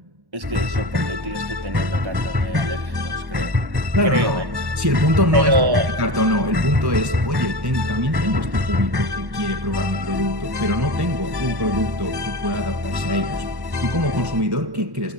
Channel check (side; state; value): left; late; 1.1 ms